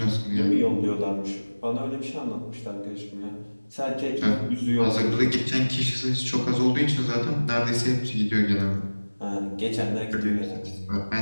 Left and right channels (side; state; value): both; inverted; correlation -1.00